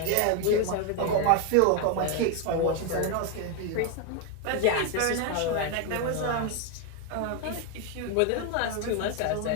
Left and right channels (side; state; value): both; different; correlation 0.01